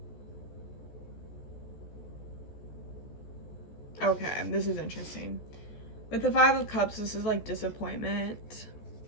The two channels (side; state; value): right; late; 14 ms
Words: Okay, this is interesting. With the Five of Cups, this is like disappointment.